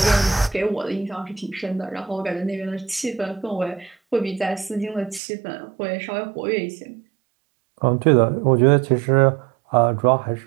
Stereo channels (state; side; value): drops out; left; at 5.2 s